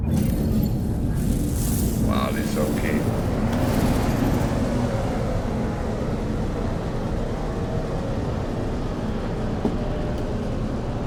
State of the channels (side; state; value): both; identical; correlation 1.00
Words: Wow, it's okay.